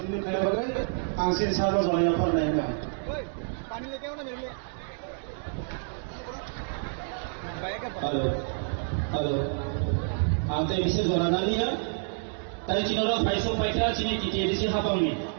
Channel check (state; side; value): silent; left; digital silence